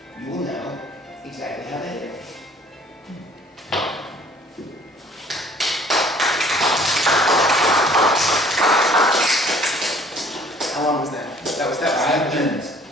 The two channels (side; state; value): both; normal; correlation 0.55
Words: you will know exactly how they did it. How long was that? That was 5 minutes.